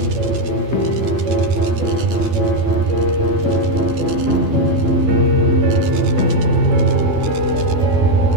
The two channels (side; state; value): left; late; 12 ms